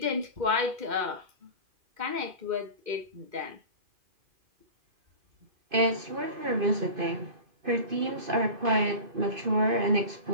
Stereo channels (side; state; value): left; late; 2.5 ms